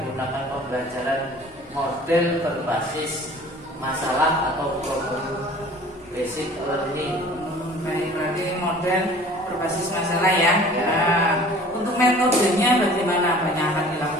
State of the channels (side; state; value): both; normal; correlation 0.47